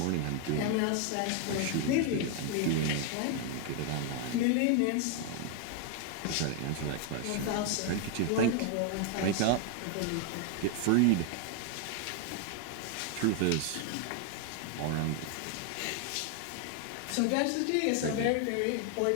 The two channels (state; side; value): different; both; correlation 0.00